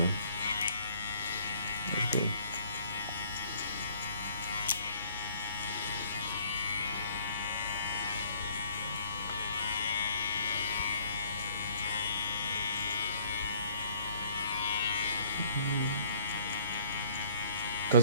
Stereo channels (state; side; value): inverted; both; correlation -0.59